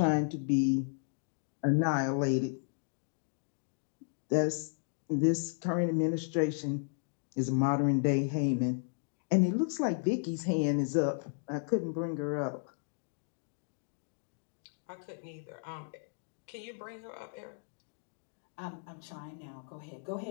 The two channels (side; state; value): right; silent; digital silence